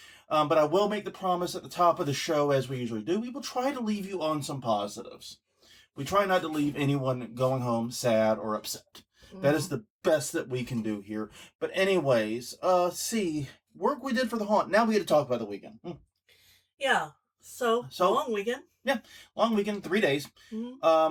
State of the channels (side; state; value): both; identical; correlation 1.00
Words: But I will make the promise at the top of the show, as we usually do, we will try to leave you on some positives. We try not to leave anyone going home sad or upset. That is the best that we can do here. But anyways, work we did for the haunt. Now we get to talk about the weekend. Yeah. So long weekend. Yeah, long weekend, 3 days.